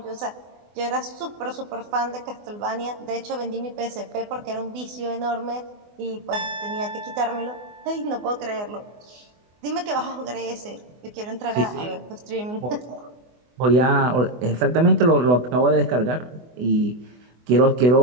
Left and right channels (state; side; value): late; left; 24 ms